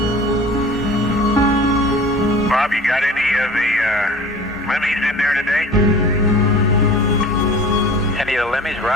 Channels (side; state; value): both; normal; correlation 0.42